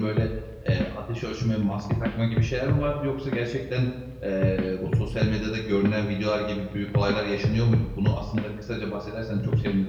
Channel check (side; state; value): both; identical; correlation 1.00